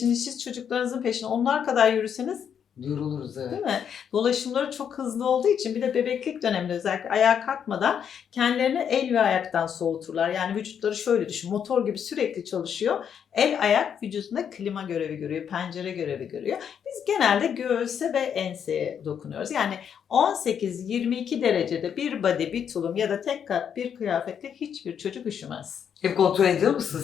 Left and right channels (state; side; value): quieter; right; 8.1 dB